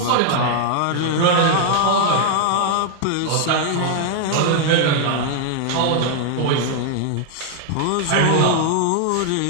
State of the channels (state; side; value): different; both; correlation 0.00